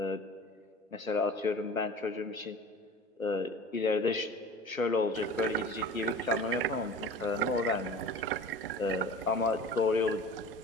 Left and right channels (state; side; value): normal; both; correlation 0.39